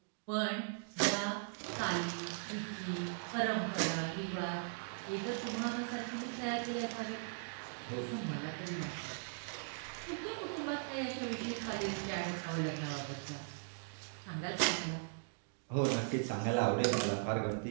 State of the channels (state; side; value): silent; left; digital silence